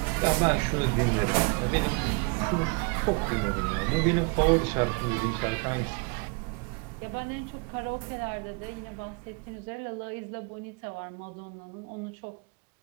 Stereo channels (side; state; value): left; quieter; 31.0 dB